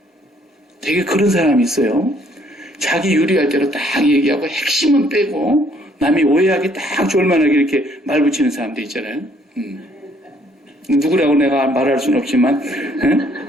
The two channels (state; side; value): normal; both; correlation 0.64